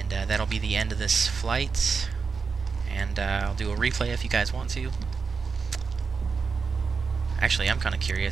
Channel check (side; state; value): left; quieter; 5.2 dB